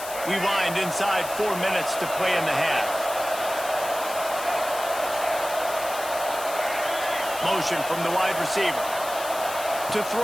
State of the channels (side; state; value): left; noise; hiss, 11 dB below the sound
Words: We wind inside 4 minutes to play in the half. Motion from the wide receiver. To